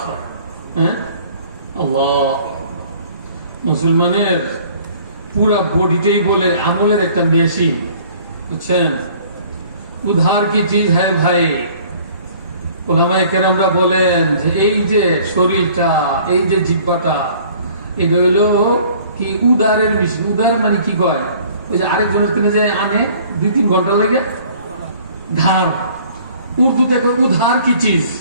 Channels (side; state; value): both; inverted; correlation -0.53